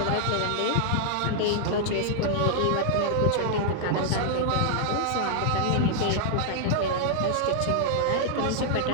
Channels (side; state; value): both; different; correlation -0.01